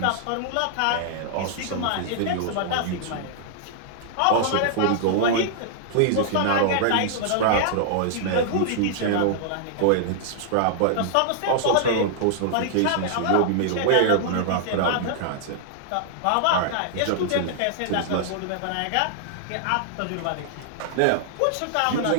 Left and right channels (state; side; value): different; both; correlation -0.01